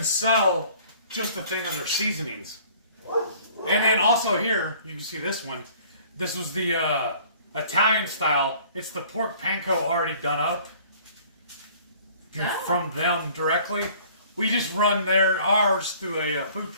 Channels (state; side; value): inverted; both; correlation -0.53